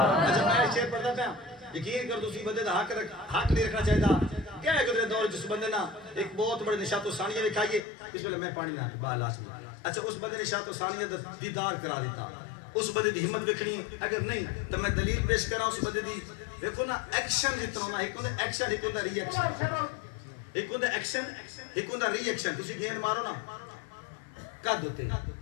میں شعر پڑھتا پہ یقین کر دوسری بندے دا حق نہیں رکھنا چاہیے تھا کیا ہے گزرے دور جس بندے نا ایک بہت بڑے نشاط و ثانیہ میں کھائیے اس میں میں پانی نہ بالا سمجھا اچھا اس بندے نشاط و ثانیہ دیدار کرا دیتا اس بندے دی ہمت بکھنی اگر نہیں تو میں دلیل پیش کرا اس بندے دی دیکھو نا ایکشن جتنا ہونا ایک ہوندہ ایکشن ایک ہوندہ ری ایکشن ایک ہوندہ ایکشن ایک ہوندہ ری ایکشن تسی گیند مارو نا قد ہوتے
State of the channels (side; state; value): right; drops out; at 7.9 s